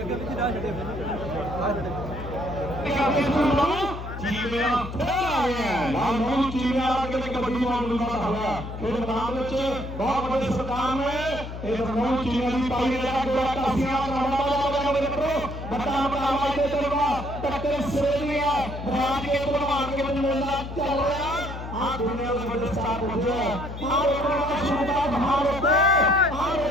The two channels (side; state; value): left; noise; hum, 9 dB below the sound